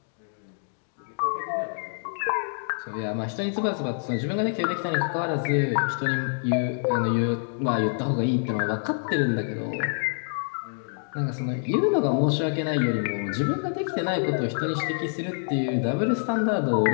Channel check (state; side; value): silent; right; digital silence